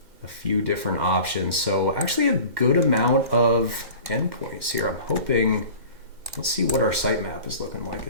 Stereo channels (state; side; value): late; left; 2.1 ms